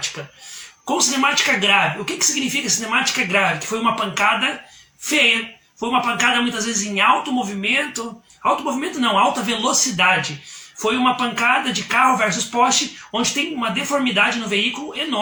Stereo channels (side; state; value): both; identical; correlation 1.00